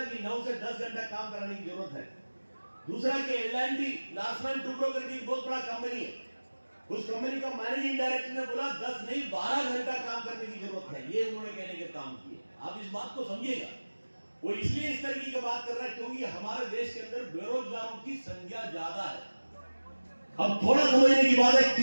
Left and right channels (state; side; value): inverted; both; correlation -1.00